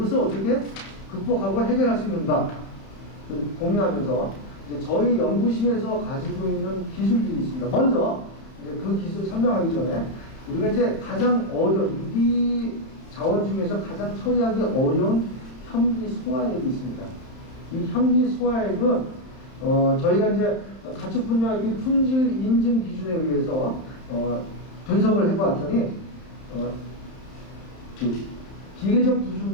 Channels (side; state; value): right; late; 31 ms